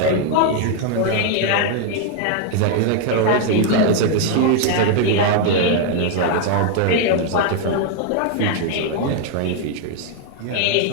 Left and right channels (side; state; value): both; different; correlation 0.00